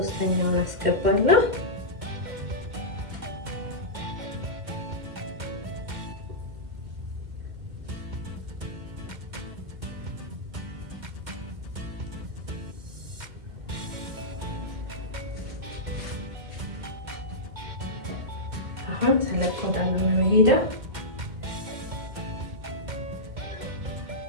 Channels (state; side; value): late; left; 2.1 ms